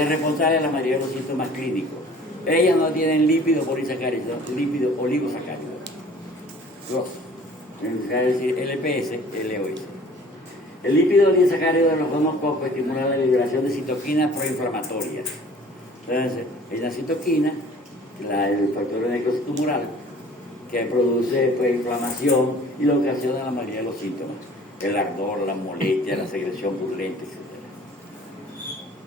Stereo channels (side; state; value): both; normal; correlation 0.49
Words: responsable de la mayoría de los síntomas clínicos. Ellas no tienen lípido polisacárido, sino lípido oligosacárido. Dos. Es decir, LPS, LOS. El lípido oligosacárido de los gonococos estimula la liberación de citoquinas proinflamatorias. Entonces, es la citoquina, el factor necrocitumoral, que produce inflamación y lo ocasiona la mayoría de los síntomas. El ardor, la molestia, la secreción purulenta, etc.